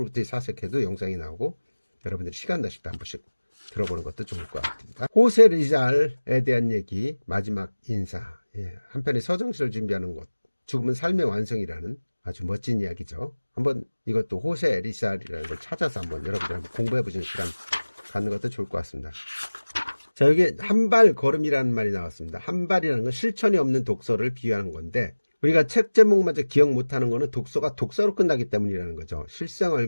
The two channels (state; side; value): inverted; both; correlation -1.00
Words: 사색해도 영상이 나오고 여러분들이 시간 나실 때 한 번씩 들어보는 것도 좋을 것 같습니다. 호세 리잘에 대한 얘기, 마지막 인사. 예, 한편의 서정시를 준비하는 곳, 죽음은 삶의 완성이라는 아주 멋진 이야기죠. 한번 이것도 호세 리잘이라는 걸 찾아서 한번 여러분들 한번 공부해 보시는 시간 갖는 것도 좋을 것 같습니다. 자, 여기 한발 걸음이라는 말이 나왔습니다. 한발이라는 건 실천이 없는 독서를 비유하는 건데 우리가 책 제목마저 기억 못하는 거는 독서가 독서로 끝나기 때문이라는 거죠.